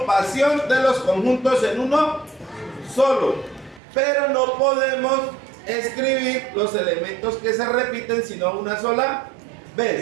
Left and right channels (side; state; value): left; drops out; at 3.8 s